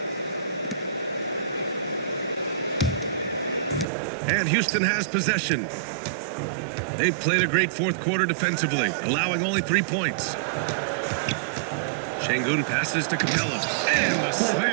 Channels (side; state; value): left; drops out; at 3.9 s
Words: And Houston has possession. They've played a great fourth quarter defensively, allowing only 3 points. Şengün passes to Capella. And the